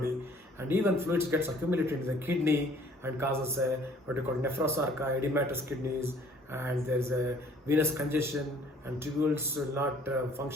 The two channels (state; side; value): normal; both; correlation 0.56